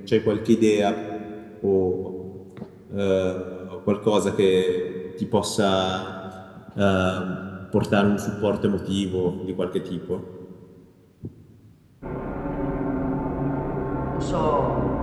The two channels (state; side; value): identical; both; correlation 1.00